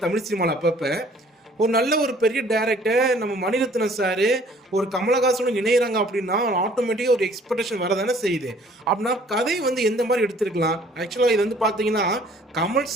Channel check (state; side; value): normal; both; correlation 0.56